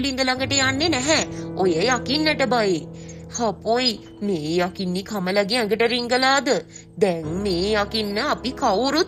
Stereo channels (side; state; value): both; identical; correlation 1.00